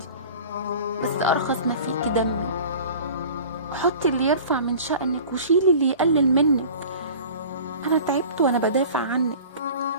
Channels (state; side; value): inverted; both; correlation -0.41